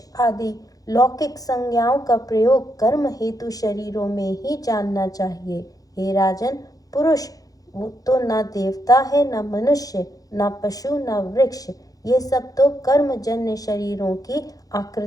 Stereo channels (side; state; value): right; late; 0.17 ms